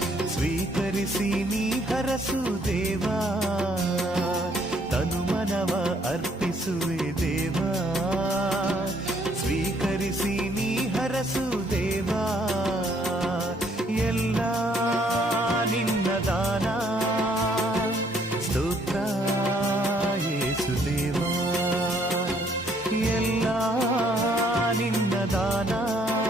ಸ್ವೀಕರಿಸಿ ನೀ ಹರಸು ದೇವಾ. ತನು ಮನವ ಅರ್ಪಿಸುವೆ ದೇವಾ, ಸ್ವೀಕರಿಸಿ ನೀ ಹರಸು ದೇವಾ. ಎಲ್ಲ ನಿನ್ನ ದಾನ, ಸ್ತೋತ್ರ ಯೇಸುದೇವಾ. ಎಲ್ಲ ನಿನ್ನ ದಾನ,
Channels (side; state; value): both; normal; correlation 0.66